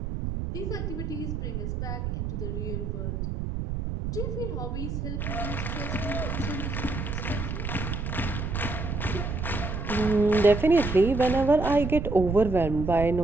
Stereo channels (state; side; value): noise; right; rumble, 3 dB below the sound